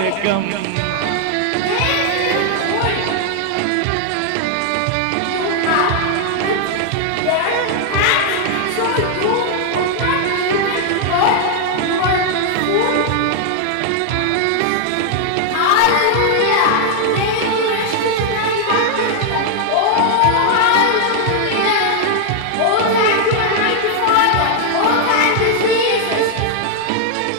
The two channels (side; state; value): both; different; correlation 0.00